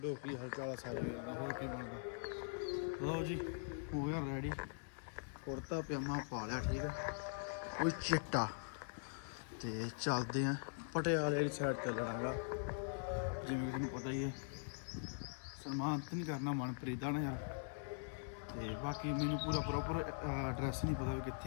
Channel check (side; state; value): right; silent; digital silence